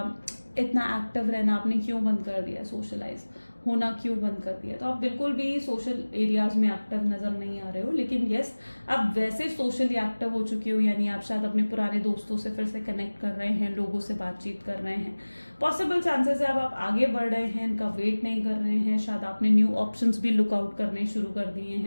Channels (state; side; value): inverted; both; correlation -1.00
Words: इतना एक्टिव रहना आपने क्यों बंद कर दिया, सोशलाइज होना क्यों बंद कर दिया। तो आप बिल्कुल भी सोशल एरियाज में एक्टिव नजर नहीं आ रहे हो, लेकिन यस, आप वैसे सोशली एक्टिव हो चुके हो, यानी आप शायद अपने पुराने दोस्तों से फिर से कनेक्ट कर रहे हैं, लोगों से बातचीत कर रहे हैं। पॉसिबल चांसेस है अब आप आगे बढ़ रहे हैं, इनका वेट नहीं कर रहे हैं, शायद आपने न्यू ऑप्शंस भी लुकआउट करने शुरू कर दिए